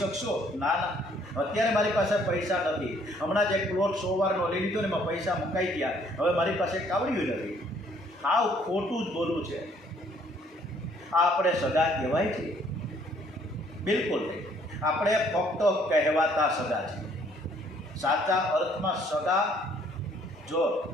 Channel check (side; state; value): both; normal; correlation 0.63